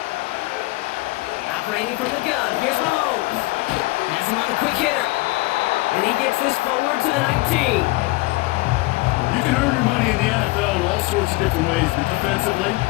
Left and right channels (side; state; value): right; quieter; 22.4 dB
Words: Operating from the gun, here's Mahomes. Has him on the quick hitter. And he gets this forward to the 19. You can earn your money in the NFL in all sorts of different ways, but defensively,